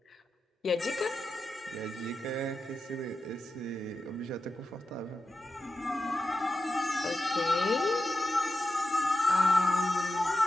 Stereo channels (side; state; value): both; normal; correlation 0.90